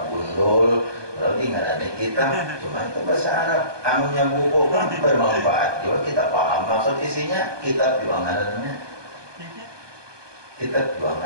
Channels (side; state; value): left; late; 1.2 ms